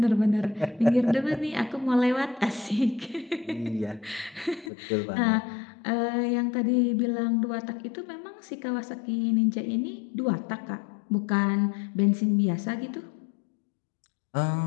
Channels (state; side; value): drops out; right; at 4.7 s